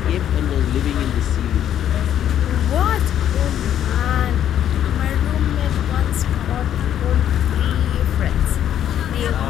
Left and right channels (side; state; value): right; quieter; 10.4 dB